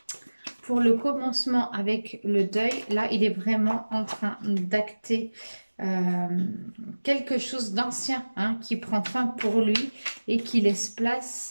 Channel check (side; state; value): both; inverted; correlation -1.00